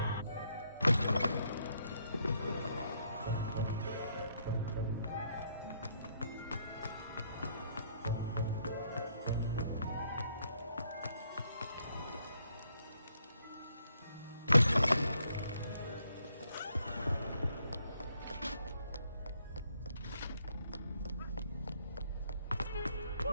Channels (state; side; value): inverted; both; correlation -0.72